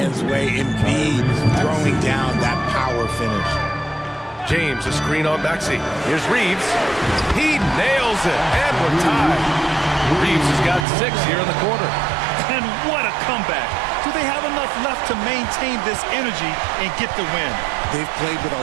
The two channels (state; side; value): drops out; left; at 10.9 s